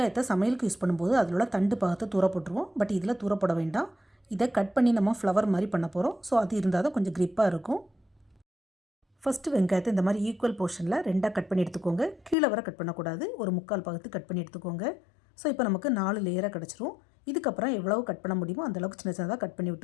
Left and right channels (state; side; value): drops out; right; at 12.4 s